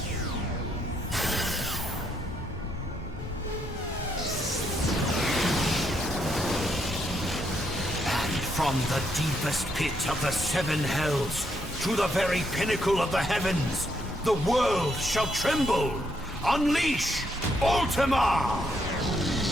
From the deepest pit of the seven hells to the very pinnacle of the heavens, the world shall tremble. Unleash Ultima!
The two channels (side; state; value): both; normal; correlation 0.76